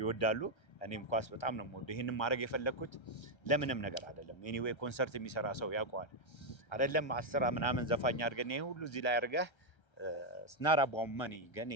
እኔም ኳስ በጣም ነው የምወደው። ይሄንን ማድረግ የፈለኩት ለምንም ነገር አይደለም። ኤኒዌይ ኮንሰርት የሚሰራ ሰው ያውቀዋል አይደለም 10 ምናምን ዘፋኝ አድርገን ይሄ ሁሉ እዚህ ላይ አድርገህ ስናራ ቦመኒ ግን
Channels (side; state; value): right; late; 1.3 ms